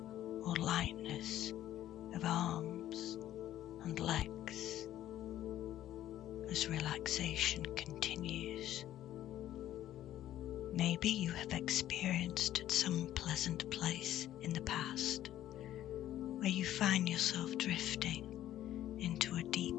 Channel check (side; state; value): right; quieter; 12.7 dB